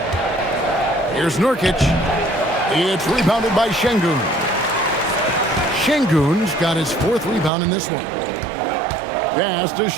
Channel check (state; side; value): drops out; left; at 7.5 s